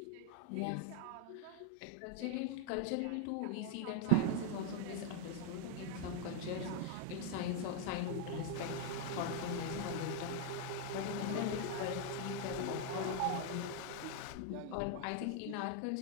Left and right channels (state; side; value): different; both; correlation 0.00